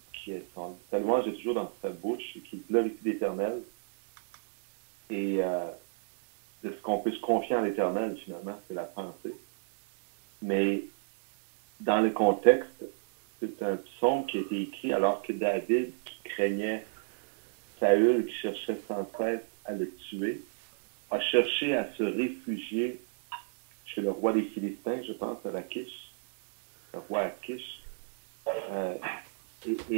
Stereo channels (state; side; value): silent; left; 57 dB below the other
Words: sa louange est toujours dans sa bouche et qu'il glorifie l'Éternel. Et de ce qu'on peut se confier en l'Éternel, finalement, c'est la pensée. Mais dans le contexte, c'est un psaume qui a été écrit alors que David, qui craignait Saül, qui cherchait sans cesse à le tuer, a cherché à se réfugier chez le roi des Philistins, je pense, à Lachish, le roi Achish,